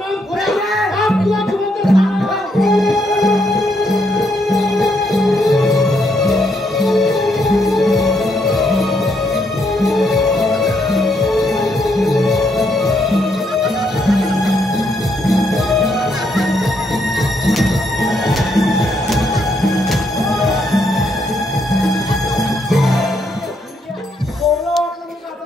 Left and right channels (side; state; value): both; normal; correlation 0.75